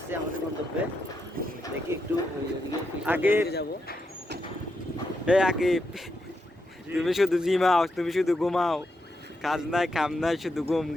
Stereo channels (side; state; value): both; normal; correlation 0.83